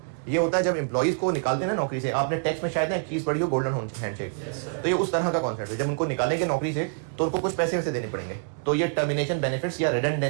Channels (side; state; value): left; silent; digital silence